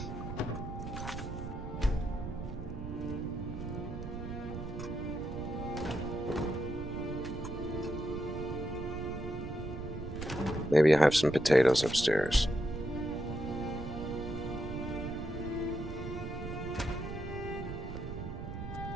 Maybe I have some potatoes upstairs.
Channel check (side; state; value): right; noise; rumble, 7 dB below the sound